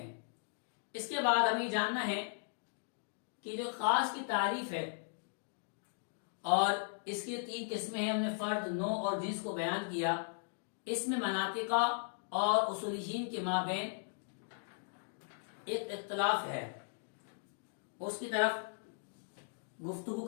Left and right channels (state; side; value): silent; right; digital silence